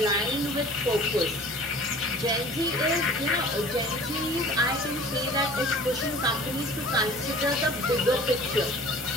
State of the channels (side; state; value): both; normal; correlation 0.45